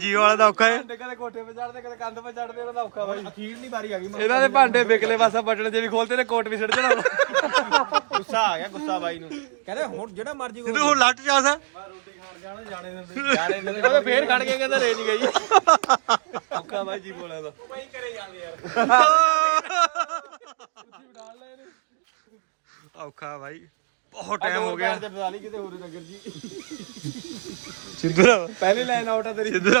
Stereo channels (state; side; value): silent; left; digital silence